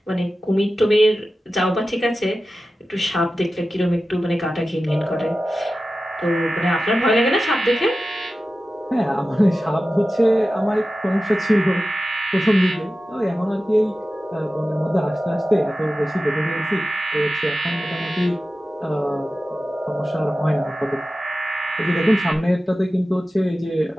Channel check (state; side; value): normal; both; correlation 0.94